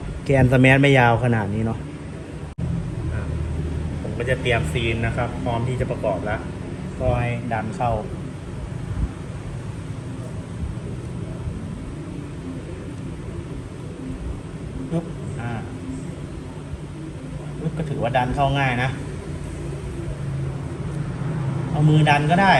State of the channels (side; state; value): both; identical; correlation 1.00